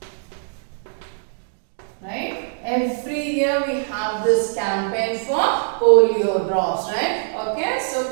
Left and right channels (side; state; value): left; silent; digital silence